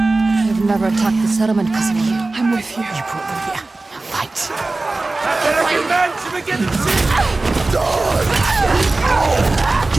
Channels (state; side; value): quieter; left; 3.2 dB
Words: They've never attacked the settlement because of you. I'm with you. You brought them here. Now fight.